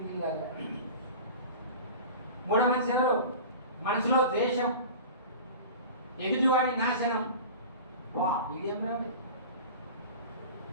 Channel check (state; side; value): inverted; both; correlation -0.36